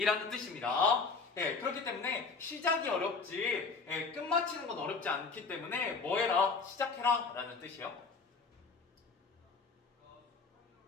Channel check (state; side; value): quieter; right; 4.5 dB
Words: 뜻입니다. 그렇기 때문에 시작이 어렵지 끝마치는 건 어렵지 않기 때문에 뭐 해라? 시작해라 라는 뜻이요.